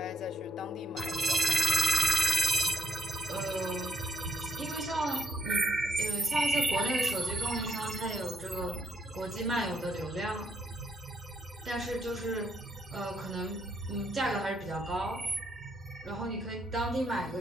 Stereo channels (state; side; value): normal; both; correlation 0.73